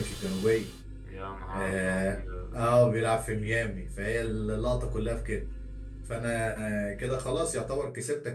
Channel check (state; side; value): identical; both; correlation 1.00